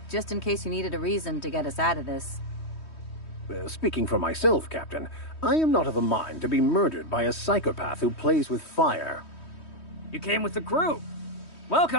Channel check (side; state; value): right; late; 3.1 ms